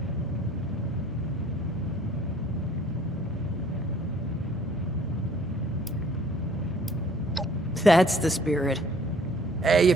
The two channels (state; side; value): normal; both; correlation 0.56